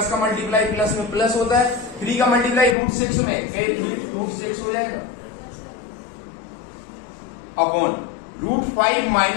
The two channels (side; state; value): right; drops out; at 2.8 s